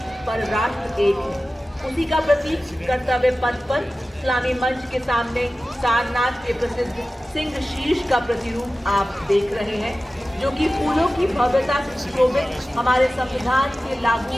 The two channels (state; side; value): normal; both; correlation 0.96